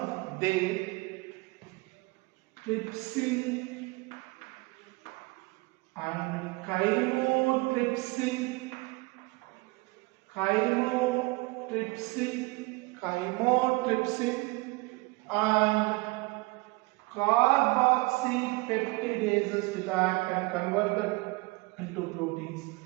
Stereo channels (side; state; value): left; quieter; 25.1 dB